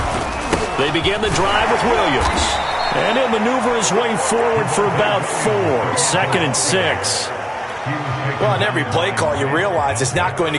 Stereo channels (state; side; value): identical; both; correlation 1.00